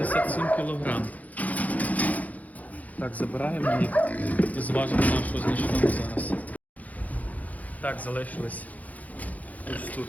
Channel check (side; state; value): right; late; 0.075 ms